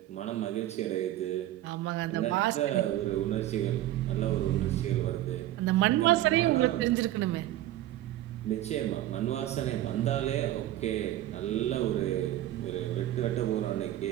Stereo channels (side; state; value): left; quieter; 14.1 dB